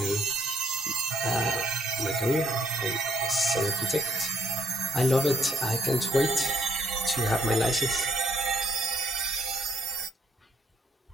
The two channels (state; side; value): normal; both; correlation 0.67